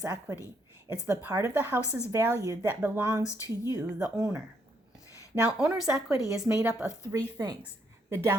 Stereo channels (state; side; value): normal; both; correlation 0.73